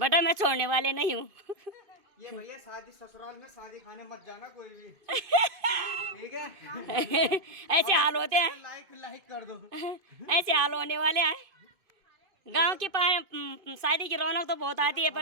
मैं छोड़ने वाले नहीं हूँ। ये भैया शादी ससुराल में शादी खाने मत जाना कोई भी, ठीक है? ऐसे हाल होते हैं, लाइक कर दो। ऐसे हाल होने वाले हैं। गांव की शादी की रौनक तो बहुत आती है,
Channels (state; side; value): late; left; 2.5 ms